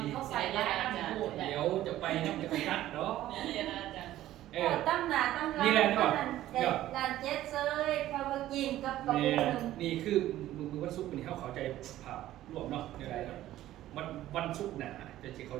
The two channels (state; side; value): quieter; left; 14.0 dB